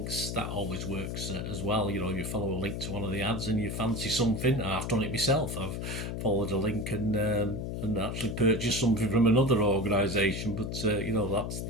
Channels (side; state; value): left; noise; hum, 4 dB below the sound